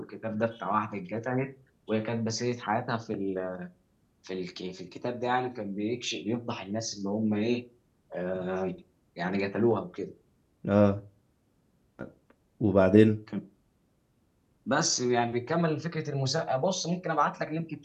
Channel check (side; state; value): both; identical; correlation 1.00